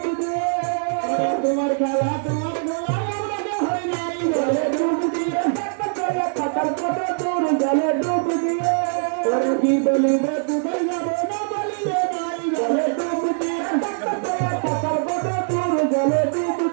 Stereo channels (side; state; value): left; silent; 64 dB below the other